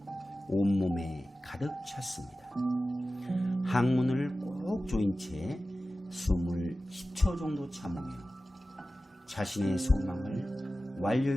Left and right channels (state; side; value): normal; both; correlation 0.95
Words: 온몸에 가득 찼습니다. 항문을 꼭 조인 채 숨을 10초 정도 참으며 자신의 소망을